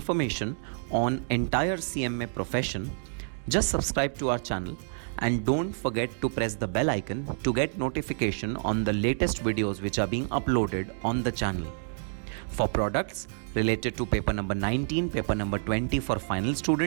on entire CMA profession, just subscribe to our channel and don't forget to press the bell icon to get notification on the latest videos which are being uploaded on the channel. For products related to paper number 19, paper number 20 for final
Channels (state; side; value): silent; left; digital silence